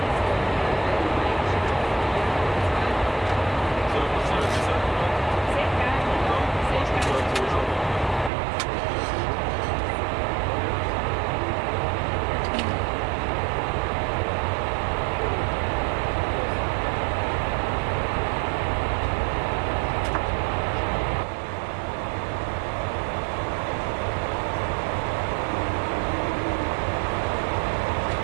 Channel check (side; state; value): left; drops out; at 8.3 s